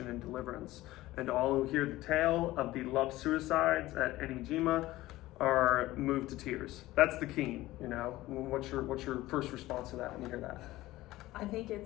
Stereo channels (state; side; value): quieter; right; 17.2 dB